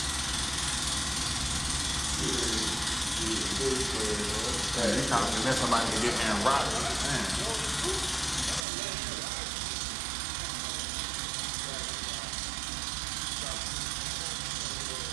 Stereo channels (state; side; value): drops out; left; at 8.6 s